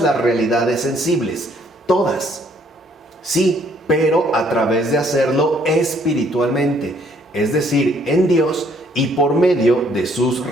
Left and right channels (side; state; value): both; normal; correlation 0.65